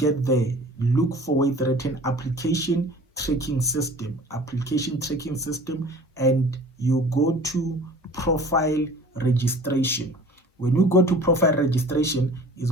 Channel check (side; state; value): both; normal; correlation 0.45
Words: there, look for it written application tracking system, and you go to profile registration. When you go to profile registration, it's